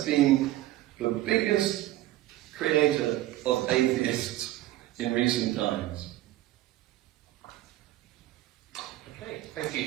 been the biggest creator of atheists in recent times. Okay, thank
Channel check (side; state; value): left; quieter; 15.6 dB